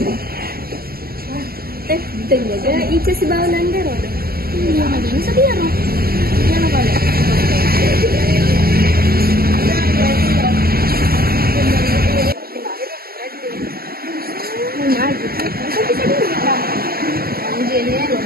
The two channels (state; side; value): late; left; 0.44 ms